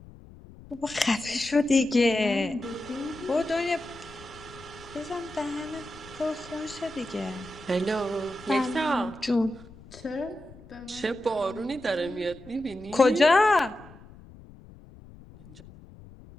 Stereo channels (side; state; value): left; noise; rumble, 20 dB below the sound